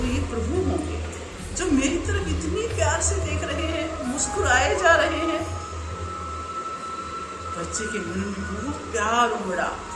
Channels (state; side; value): identical; both; correlation 1.00